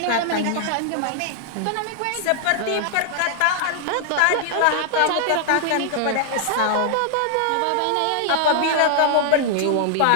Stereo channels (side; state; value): both; different; correlation 0.00